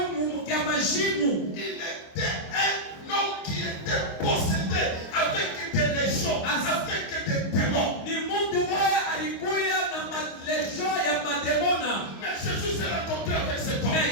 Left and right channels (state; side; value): late; right; 25 ms